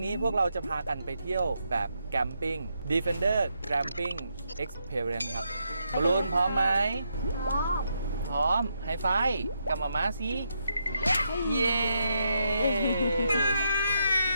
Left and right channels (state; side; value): inverted; both; correlation -0.80